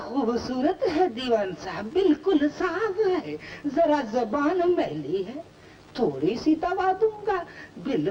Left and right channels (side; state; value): both; identical; correlation 1.00